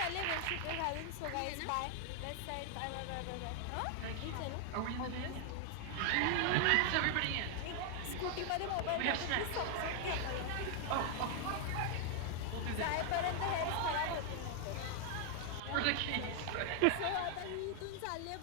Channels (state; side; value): different; both; correlation 0.00